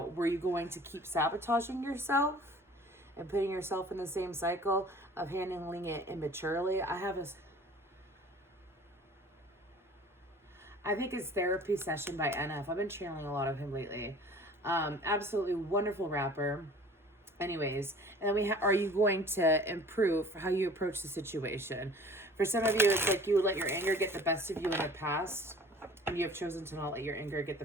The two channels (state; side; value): normal; both; correlation 0.47